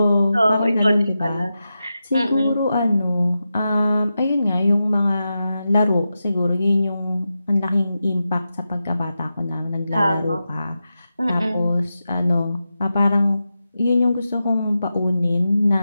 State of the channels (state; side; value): inverted; both; correlation -0.91